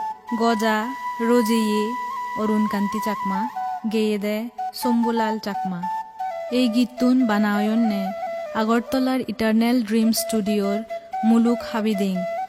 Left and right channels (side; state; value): both; identical; correlation 1.00